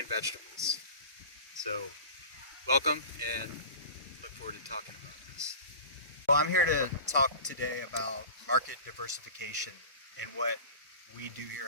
vegetables. So welcome and look forward to talking about this. Well, I'm here to talk today about market diversification and what we do here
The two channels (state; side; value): inverted; both; correlation -0.36